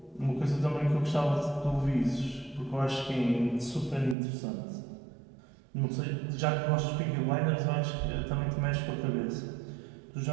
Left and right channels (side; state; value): left; drops out; at 4.2 s